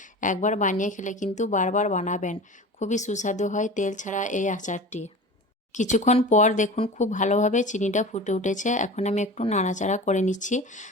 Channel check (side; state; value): both; normal; correlation 0.35